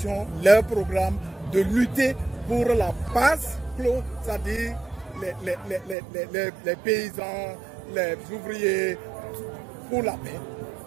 leur programme de lutter pour la paix, c'est-à-dire les paysans, les ouvriers, pour la paix,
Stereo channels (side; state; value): left; drops out; at 6.0 s